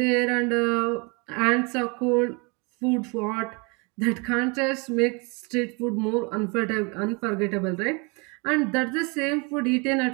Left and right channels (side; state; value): left; quieter; 31.1 dB